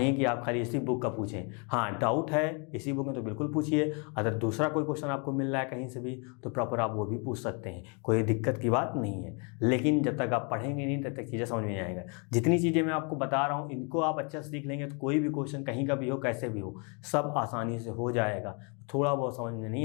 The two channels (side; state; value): right; quieter; 35.1 dB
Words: कि आप खाली इसी बुक का पूछें, हाँ डाउट है इसी बुक में तो बिल्कुल पूछिए, अगर दूसरा कोई क्वेश्चन आपको मिल रहा है कहीं से भी तो प्रॉपर आप वो भी पूछ सकते हैं, कोई दिक्कत की बात नहीं है। लेकिन जब तक आप पढ़ेंगे नहीं तब तक चीज़ें समझ में नहीं आएगा। जितनी चीज़ें मैं आपको बता रहा हूँ इनको आप अच्छे से सीख लेंगे तो कोई भी क्वेश्चन कहीं का भी हो कैसे भी हो सब आसानी से हो जाएगा। थोड़ा बहुत समझ में